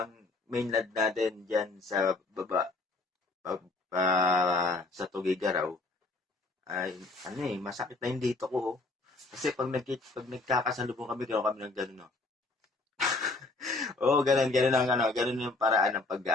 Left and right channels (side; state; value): right; quieter; 3.4 dB